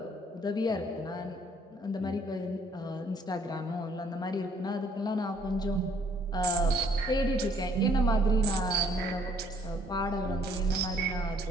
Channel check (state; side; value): normal; both; correlation 0.63